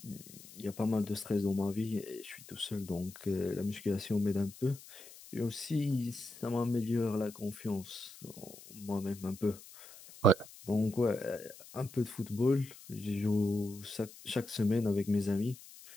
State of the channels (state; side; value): noise; left; hiss, 18 dB below the sound